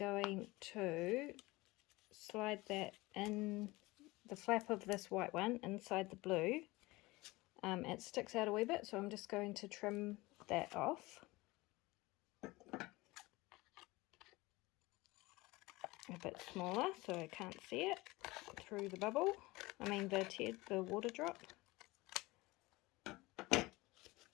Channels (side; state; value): right; quieter; 21.3 dB